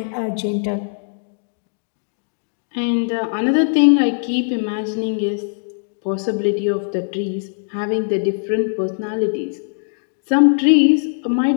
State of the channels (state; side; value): silent; right; digital silence